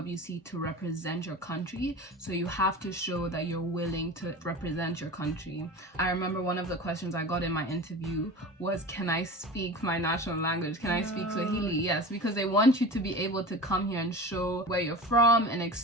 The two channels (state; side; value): normal; both; correlation 0.33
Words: to represent your country, so you have to show that you're willing to represent your country. I remember one of the questions I got in my interview was, can I speak my national language? Can I speak Swahili? Yes, because they want you to be able to come here and show where you're from and